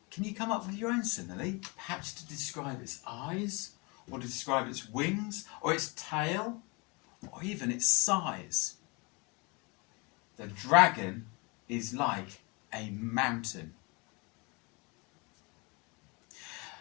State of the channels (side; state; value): right; quieter; 29.1 dB